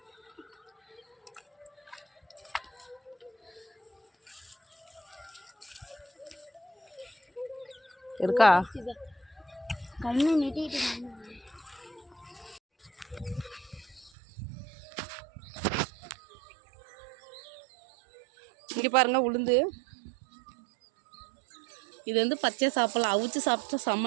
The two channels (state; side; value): drops out; left; at 14.1 s